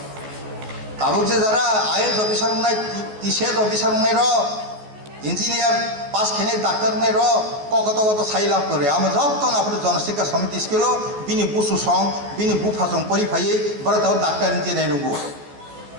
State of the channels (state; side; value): late; left; 14 ms